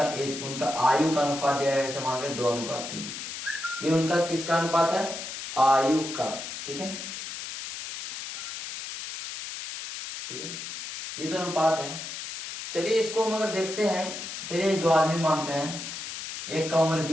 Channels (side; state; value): left; noise; hiss, 7 dB below the sound